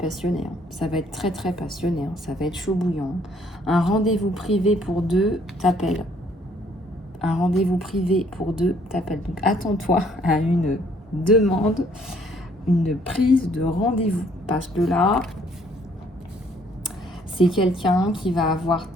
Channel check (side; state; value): both; normal; correlation 0.63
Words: Hein. Ça va être très très passionné. Hein. Ça va être chaud bouillant. Un rendez-vous privé pour deux t'appelle. Un rendez-vous privé pour deux t'appelle. Donc attends-toi à une demande, une prise de rendez-vous. Parce que là, c'est quelqu'un qui va avoir